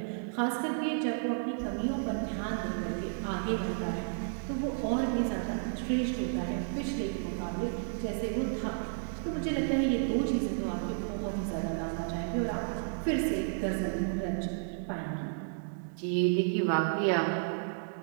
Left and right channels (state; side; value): silent; left; digital silence